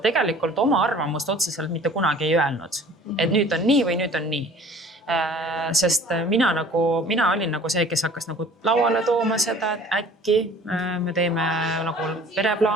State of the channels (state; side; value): normal; both; correlation 0.49